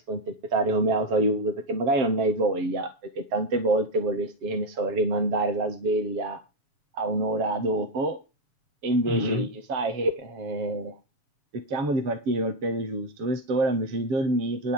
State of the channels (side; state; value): left; late; 7.1 ms